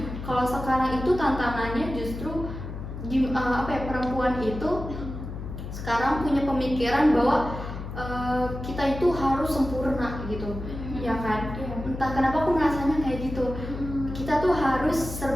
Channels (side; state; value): left; noise; hum, 8 dB below the sound